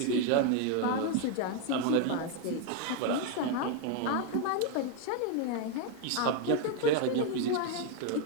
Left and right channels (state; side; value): different; both; correlation 0.01